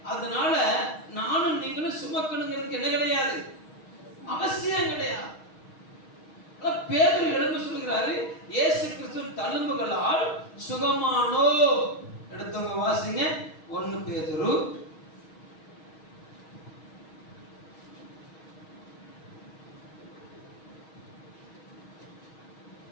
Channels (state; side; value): late; right; 6.4 ms